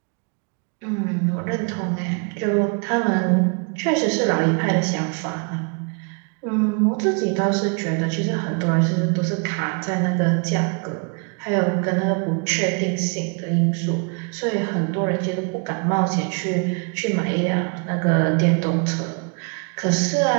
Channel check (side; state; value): left; quieter; 36.6 dB